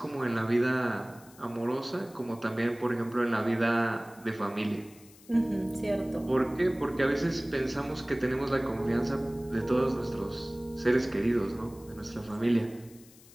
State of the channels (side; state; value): left; noise; hiss, 24 dB below the sound